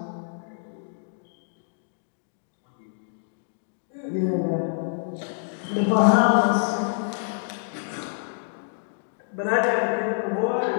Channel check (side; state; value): right; silent; digital silence